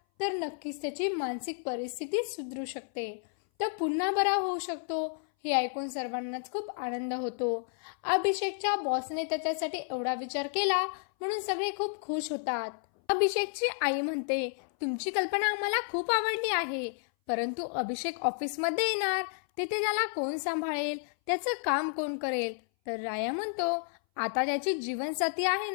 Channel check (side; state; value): right; silent; 57 dB below the other